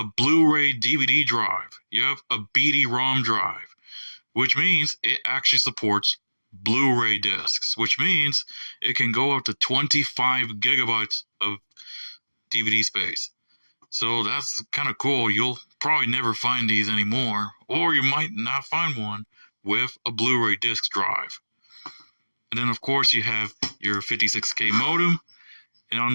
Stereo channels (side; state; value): both; inverted; correlation -1.00